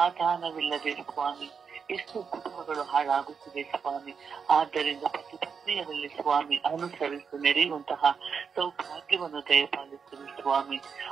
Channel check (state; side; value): quieter; left; 6.1 dB